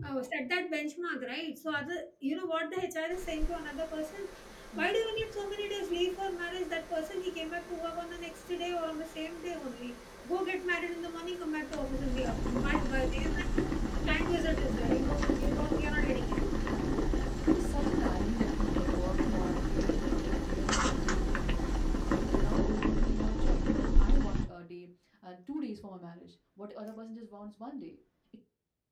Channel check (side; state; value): both; identical; correlation 1.00